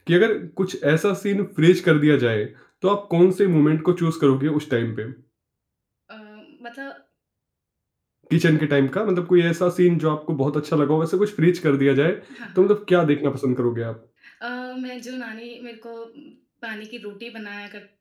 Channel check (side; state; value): both; identical; correlation 1.00